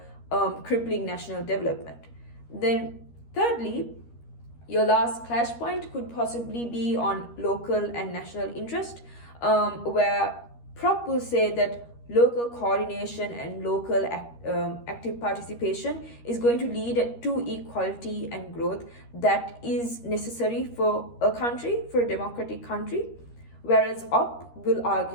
crippling national development. Then thirdly, your last clash point could possibly be on local and national interest, where Prop will say that local coordination and local active participation is going to lead to equality and growth that is necessary for a country, for a democratic country. Whereas Op will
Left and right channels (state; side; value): late; right; 13 ms